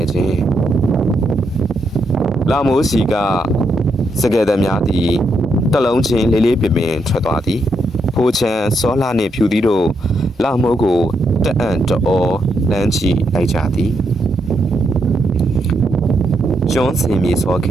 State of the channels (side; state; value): both; normal; correlation 0.79